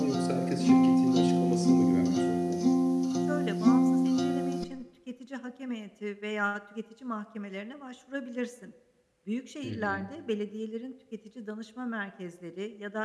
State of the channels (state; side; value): identical; both; correlation 1.00